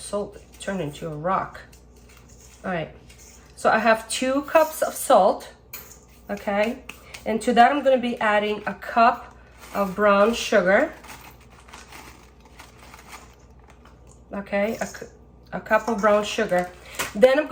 turned into a rock. All right, so I have 2 cups of salt, okay? And to that, I'm gonna be adding a cup of brown sugar, okay? A cup of brown sugar. Then I'm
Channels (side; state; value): both; identical; correlation 1.00